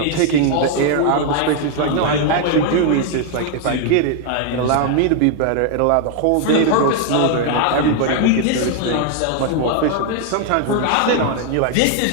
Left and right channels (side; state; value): both; different; correlation 0.00